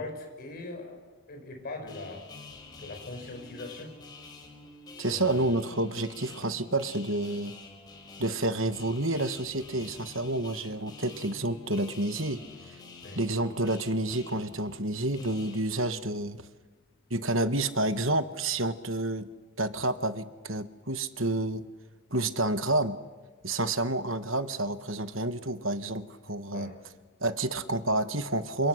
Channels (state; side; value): normal; both; correlation 0.02